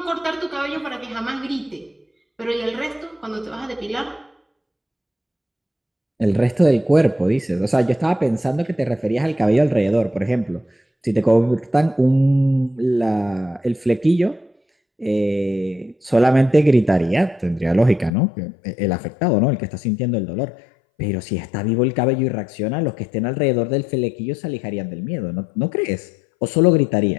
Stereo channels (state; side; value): drops out; right; at 18.1 s